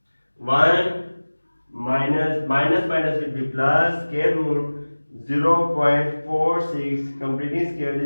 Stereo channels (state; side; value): inverted; both; correlation -1.00